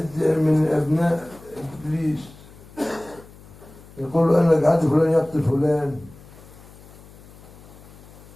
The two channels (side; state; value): left; noise; hum, 21 dB below the sound